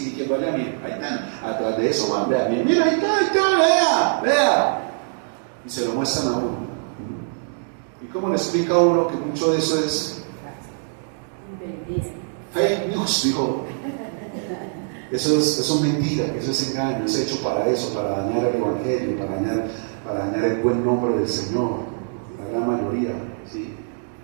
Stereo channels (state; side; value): silent; left; digital silence